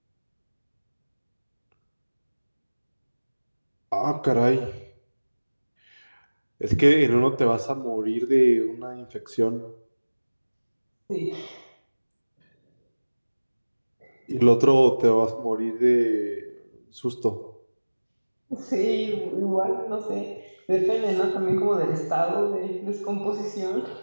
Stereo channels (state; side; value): inverted; both; correlation -1.00